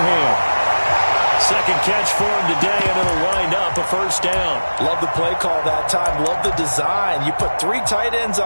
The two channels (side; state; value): both; inverted; correlation -1.00